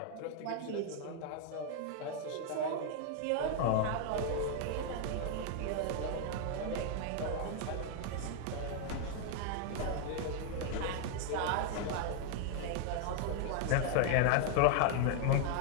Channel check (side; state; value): both; different; correlation 0.00